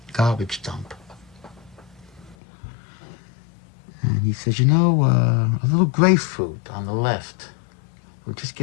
garbage dump. And he says, you know, a little grapefruit on the left will just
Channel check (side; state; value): right; drops out; at 2.4 s